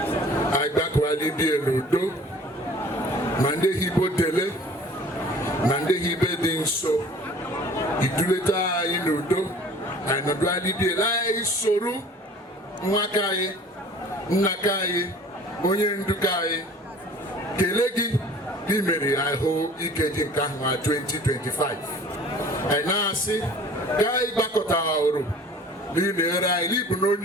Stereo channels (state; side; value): normal; both; correlation 0.48